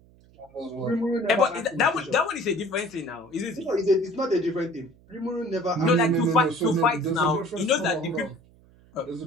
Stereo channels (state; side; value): noise; right; hum, 28 dB below the sound